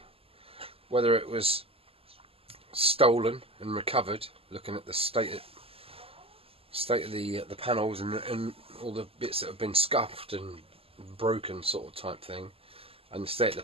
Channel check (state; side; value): late; left; 0.28 ms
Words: whether it was stolen and recovered, looking at the state of the panels and all the bits that have been scuffed and broken, sort of type thing, and the state of the